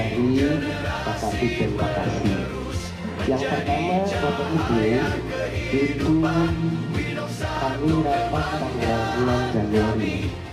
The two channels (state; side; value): identical; both; correlation 1.00